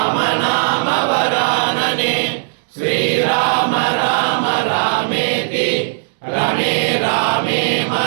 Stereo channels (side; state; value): left; silent; digital silence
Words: नाम वरानने श्रीराम राम रामेति रमे रामे